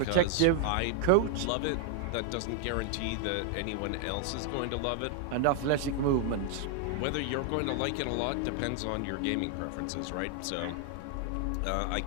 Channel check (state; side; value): different; both; correlation 0.00